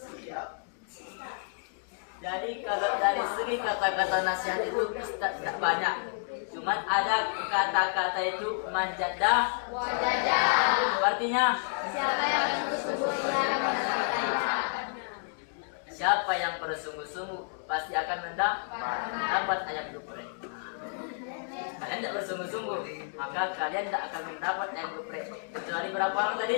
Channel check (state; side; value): silent; right; digital silence